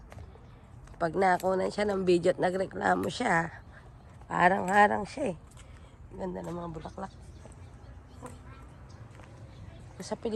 Pag nakunan siya ng video at nagreklamo siya, harang-harang siya eh. Ganda ng mga bulaklak. Sa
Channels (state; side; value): identical; both; correlation 1.00